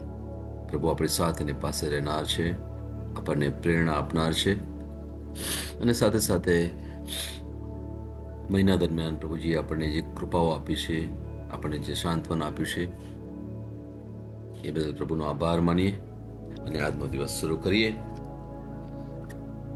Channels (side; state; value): both; identical; correlation 1.00